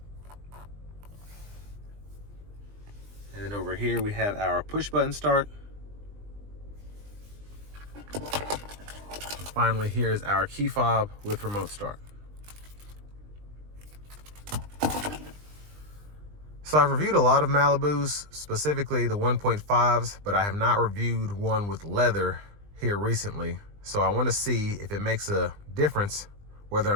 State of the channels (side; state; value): left; late; 20 ms